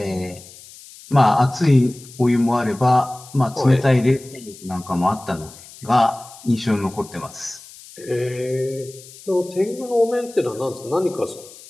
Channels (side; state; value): left; noise; hiss, 19 dB below the sound